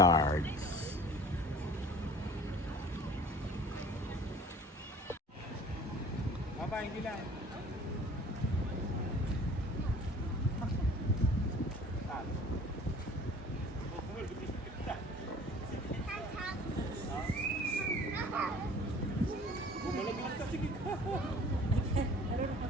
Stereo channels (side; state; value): both; normal; correlation 0.47